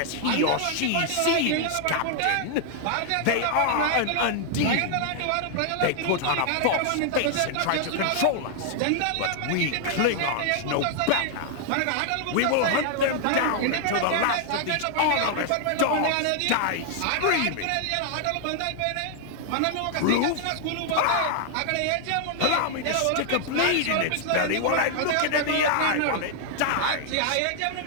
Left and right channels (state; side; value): different; both; correlation 0.00